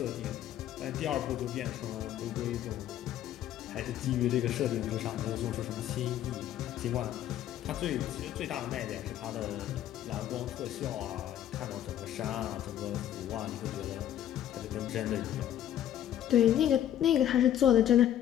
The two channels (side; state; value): right; quieter; 11.3 dB